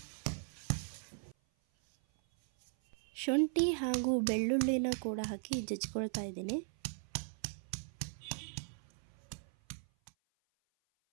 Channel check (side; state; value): left; silent; 52 dB below the other